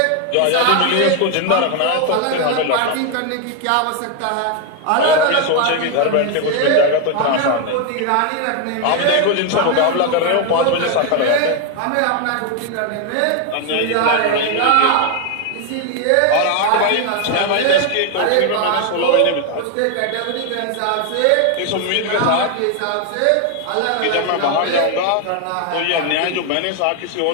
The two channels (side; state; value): both; different; correlation 0.01